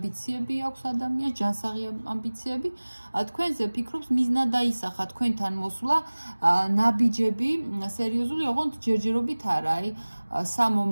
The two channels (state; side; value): inverted; both; correlation -1.00